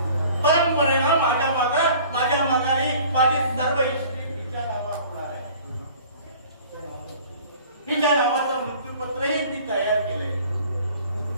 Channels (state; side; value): inverted; both; correlation -0.48